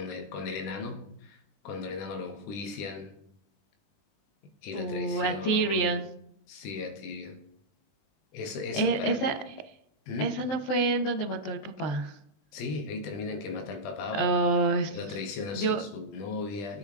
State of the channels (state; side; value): late; right; 20 ms